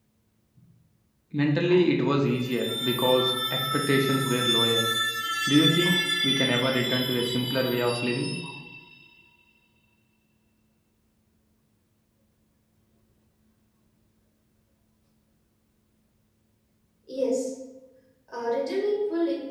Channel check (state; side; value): identical; both; correlation 1.00